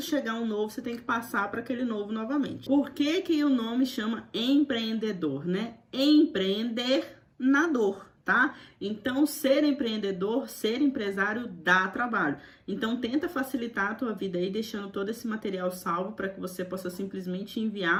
chegar um novo, você tem que passar para aquele novo novamente. Por que que o nome chama empreendedor, né? Empreender na dor. tá? Então, ser empreendedor, ser empresário dá trabalho. Então, tenta facilitar a tua vida aí, deixando todo esse material salvo para que você possa simplesmente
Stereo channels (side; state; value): both; identical; correlation 1.00